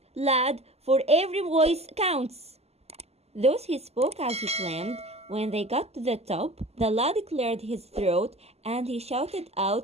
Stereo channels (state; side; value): late; left; 0.30 ms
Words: lad, for every voice counts. Thus he spoke as he climbed. When they got to the top, the lad cleared his throat and he shouted